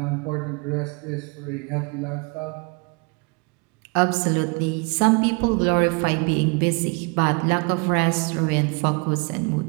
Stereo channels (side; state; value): left; quieter; 32.5 dB